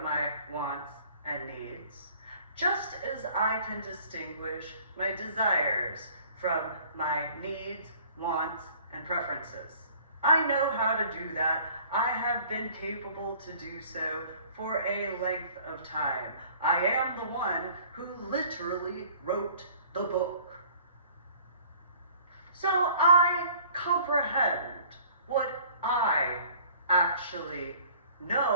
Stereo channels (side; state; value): both; inverted; correlation -0.53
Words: my wants and needs, just as I can distinguish my desires from my needs, wants, and preferences. I know how to do that. I have been capable to do so for a length of time. I am the one who literally wrote the book. So I comprehend what I actually